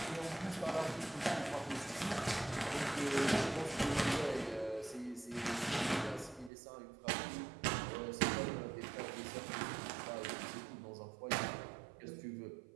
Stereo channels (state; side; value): drops out; left; at 6.5 s